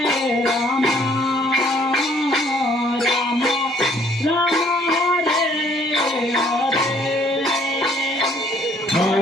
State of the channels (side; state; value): both; normal; correlation 0.61